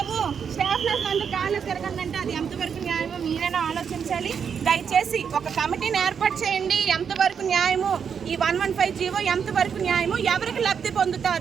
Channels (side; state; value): left; quieter; 7.0 dB